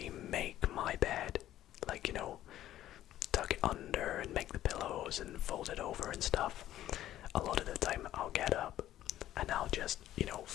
make my bed. Tuck it under and make the pillows and fold it over and stuff. A lot of the time I'll get up and I'll just,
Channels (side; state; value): right; quieter; 13.1 dB